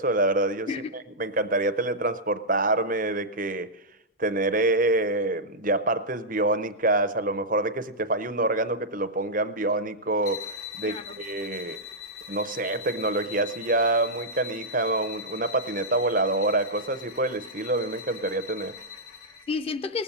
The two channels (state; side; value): normal; both; correlation -0.08